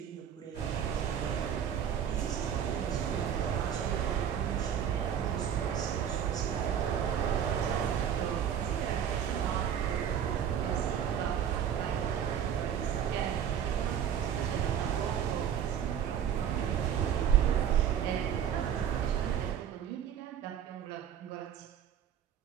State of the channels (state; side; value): quieter; left; 9.0 dB